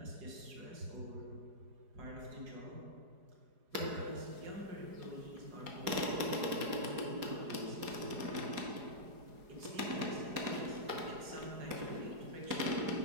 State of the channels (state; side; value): late; left; 4.8 ms